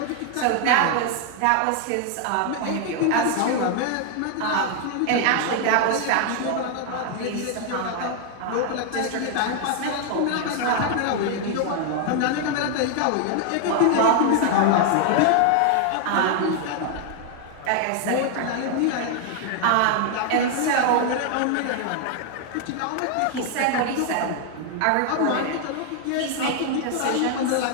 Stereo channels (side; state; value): both; different; correlation 0.00